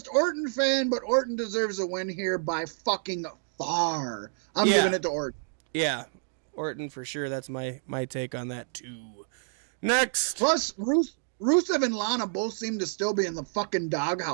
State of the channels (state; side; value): silent; left; digital silence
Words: Orton fan, but Orton deserves a win here by fucking far. I'm giving it to Orton. Yeah, Orton for sure. That's my take on that too. Next. Plus, Rusev and Lana both seem to still be in the fucking